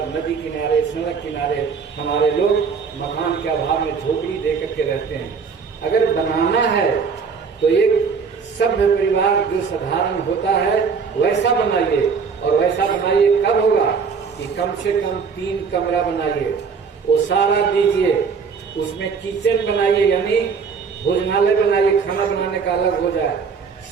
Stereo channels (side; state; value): left; quieter; 5.7 dB